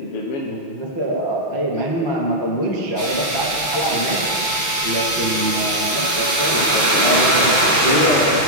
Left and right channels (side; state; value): right; late; 6.2 ms